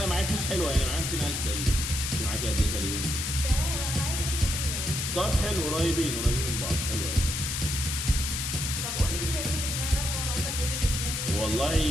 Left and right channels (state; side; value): noise; left; hiss, 2 dB below the sound